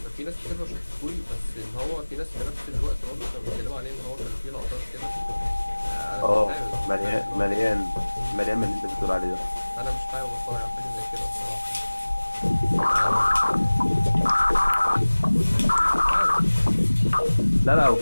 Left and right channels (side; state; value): both; inverted; correlation -1.00